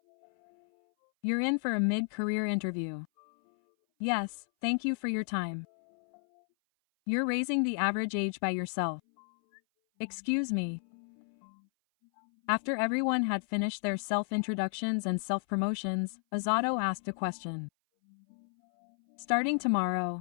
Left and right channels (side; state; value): right; silent; 56 dB below the other